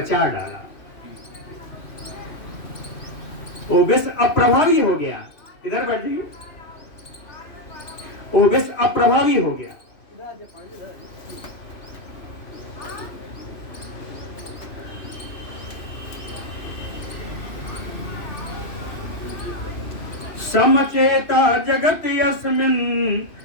डाला, वो विष अप्रभावी हो गया। इधर बैठ जाइए, वो विष अप्रभावी हो गया। समचेता जगत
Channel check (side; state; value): right; late; 3.0 ms